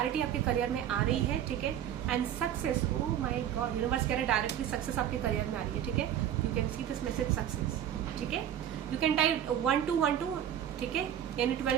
आपके करियर में आ रही है, ठीक है। And success, oh my God, universe कह रहे हैं डायरेक्टली सक्सेस आपके करियर में आ रही है, ठीक है। You can see this message success, ठीक है। यू कैन टाइप 1212, ठीक है, यानी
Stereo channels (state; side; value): quieter; left; 10.3 dB